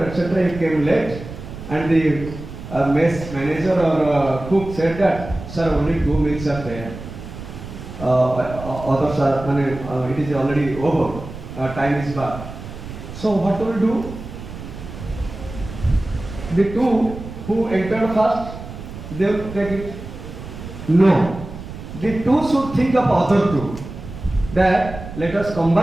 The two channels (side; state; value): right; noise; rumble, 12 dB below the sound